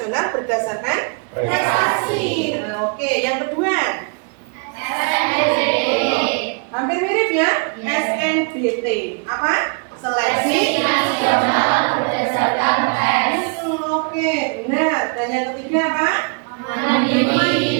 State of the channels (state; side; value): quieter; left; 36.9 dB